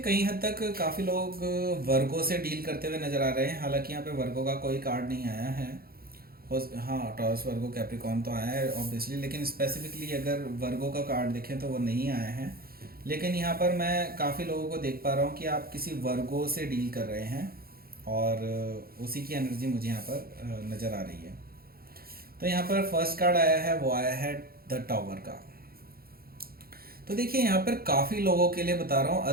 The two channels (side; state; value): left; late; 0.44 ms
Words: हद तक काफ़ी लोग वर्गो से डील करते हुए नज़र आ रहे हैं। हालांकि यहाँ पे वर्गो का कोई कार्ड नहीं आया है। हाँ, टॉरस, वर्गो, कैप्रिकॉर्न तो आया है ऑब्वियसली, लेकिन स्पेसिफिकली अगर वर्गो का कार्ड देखें तो वो नहीं आया है। लेकिन यहाँ पर मैं काफ़ी लोगों को देख पा रहा हूँ कि आप किसी वर्गो से डील कर रहे हैं और उसी की एनर्जी मुझे यहाँ पर नज़र आ रही है। तो यहाँ पर फर्स्ट कार्ड आया है, वो आया है द टावर का। तो देखिए यहाँ पर काफ़ी लोगों के लिए बता रहा हूँ,